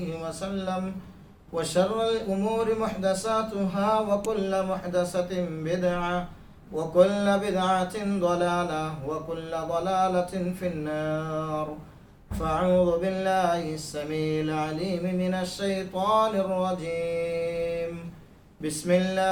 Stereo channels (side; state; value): both; identical; correlation 1.00